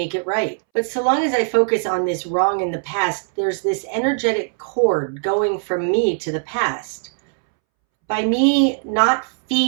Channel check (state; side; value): silent; left; 66 dB below the other